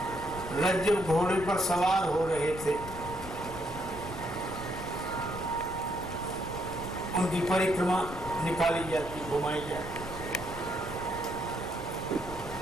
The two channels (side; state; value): left; noise; rumble, 11 dB below the sound